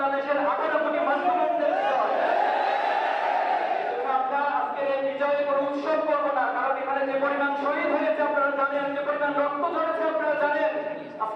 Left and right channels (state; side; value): identical; both; correlation 1.00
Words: 18 কোটি মুসলমানদের বিজয়। আমরা আজকের এই বিজয়ে কোনো উৎসব করবো না, কারণ এখানে যে পরিমাণ শহীদ হয়েছে আপনারা জানেন, যে পরিমাণ রক্ত ঝরেছে আপনারা জানেন।